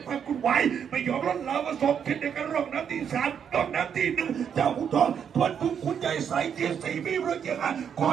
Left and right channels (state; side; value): quieter; left; 7.9 dB